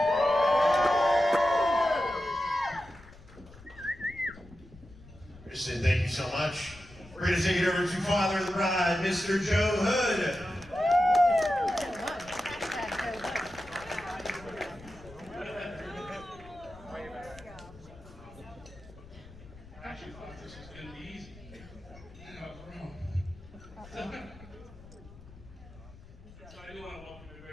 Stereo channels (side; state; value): left; noise; rumble, 20 dB below the sound